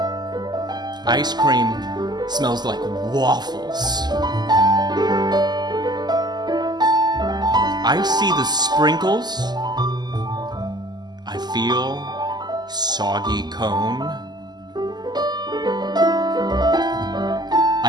Ice cream smells like waffles. I see the sprinkles. I feel soggy cone.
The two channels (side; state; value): left; late; 0.20 ms